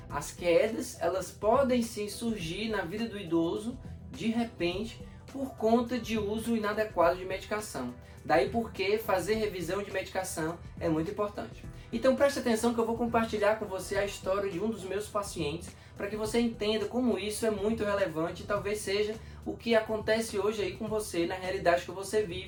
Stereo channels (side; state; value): both; identical; correlation 1.00